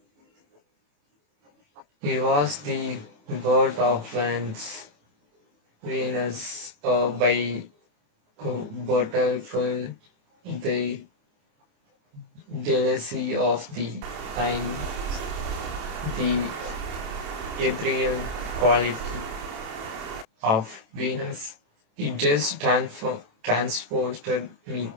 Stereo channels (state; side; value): late; left; 28 ms